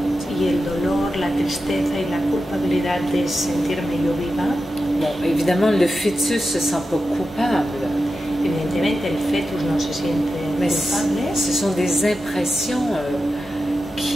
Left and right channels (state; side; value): normal; both; correlation 0.91